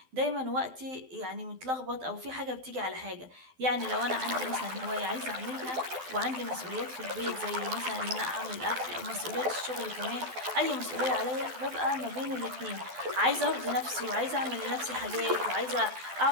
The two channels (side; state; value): left; late; 12 ms